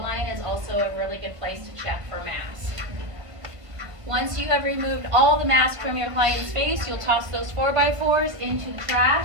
is also a really good place to check for masks. Once you have removed all the mask from your client's face, you'll toss those 4x4s into the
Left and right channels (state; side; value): late; left; 1.4 ms